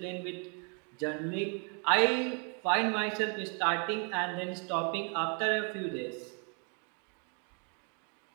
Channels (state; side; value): quieter; left; 38.5 dB